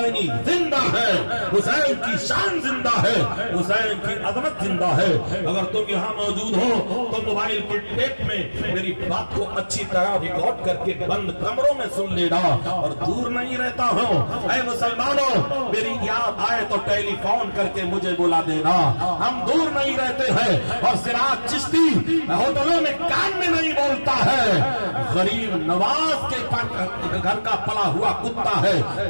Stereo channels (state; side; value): inverted; both; correlation -1.00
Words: زندہ ہے، حسین کی شان زندہ ہے، حسین کی عظمت زندہ ہے۔ اگر تم یہاں موجود ہو تو موبائل کے ٹیپ میں میری بات کو اچھی طرح ریکارڈ کر کے بند کمروں میں سن لینا، اور دور نہیں رہتا ہوں۔ اے مسلمانوں، میری یاد آئے تو ٹیلی فون کر کے مجھے بلا دینا، ہم دور نہیں رہتے ہیں۔ اور سراج چشتی ہوٹلوں میں کان میں نہیں بولتا ہے، غریب نواز کے گھر کا پلا ہوا کتا ہے